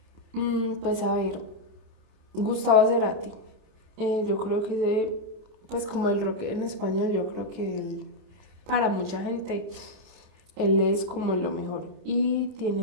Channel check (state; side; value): late; left; 27 ms